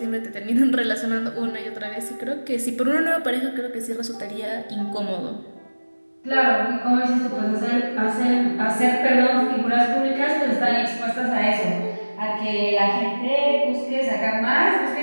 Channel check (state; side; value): inverted; both; correlation -1.00